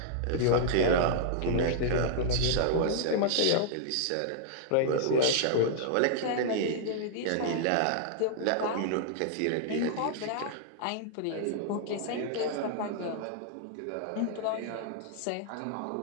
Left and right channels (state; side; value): different; both; correlation -0.01